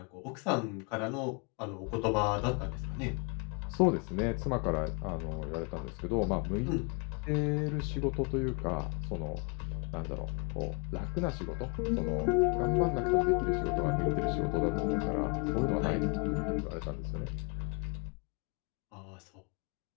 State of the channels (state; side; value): quieter; right; 34.6 dB